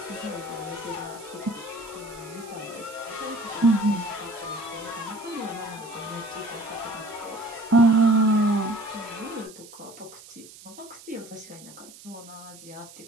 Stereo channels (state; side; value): noise; right; hiss, 18 dB below the sound